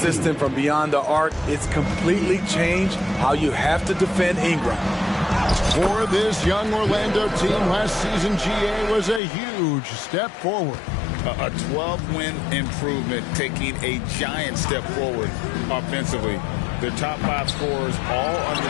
from beyond the arc, it's completely changed how you have to defend Ingram. For this young Orlando team, last season GA was a huge step forward. A 12-win improvement, taking a giant step forward offensively. Their top 5 scorers, all under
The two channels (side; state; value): right; drops out; at 9.2 s